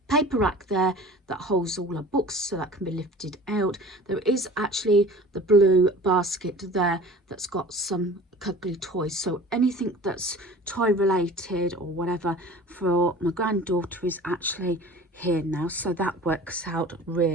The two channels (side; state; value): both; normal; correlation 0.43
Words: paper rack there that holds all our books, so that can be lifted out. There is actually the blue basket there that's got some cuddly toys, so anything that's toy related or whatever for my granddaughter is actually here now, so that works out